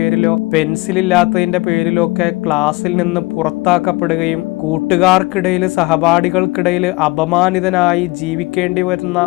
പെൻസിൽ ഇല്ലാത്തതിന്റെ പേരിലോ ഒക്കെ ക്ലാസ്സിൽ നിന്ന് പുറത്താക്കപ്പെടുകയും കൂട്ടുകാർക്കിടയിൽ സഹപാഠികൾക്കിടയിൽ അപമാനിതനായി ജീവിക്കേണ്ടി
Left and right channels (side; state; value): right; quieter; 22.7 dB